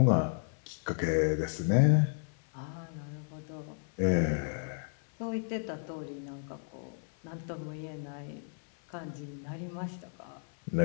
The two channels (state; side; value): silent; right; 56 dB below the other